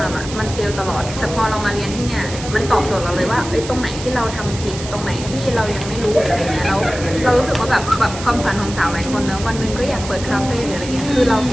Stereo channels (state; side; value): noise; right; hiss, 11 dB below the sound